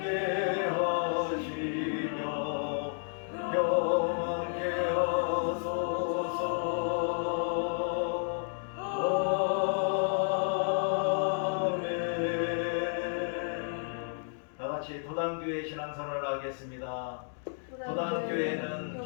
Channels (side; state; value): right; silent; digital silence